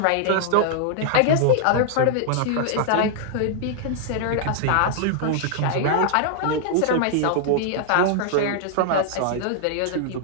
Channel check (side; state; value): both; different; correlation -0.01